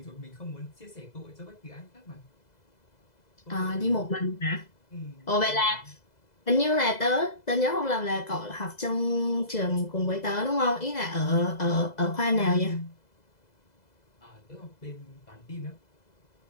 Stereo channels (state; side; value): late; right; 2.0 ms